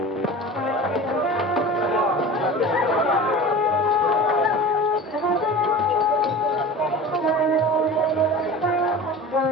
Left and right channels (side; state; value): both; normal; correlation 0.36